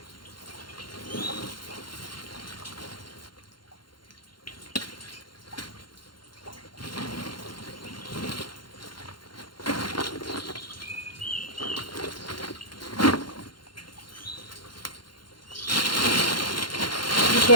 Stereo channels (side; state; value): right; late; 0.72 ms